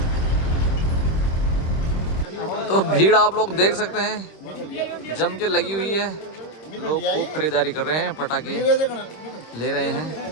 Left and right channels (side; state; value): right; late; 26 ms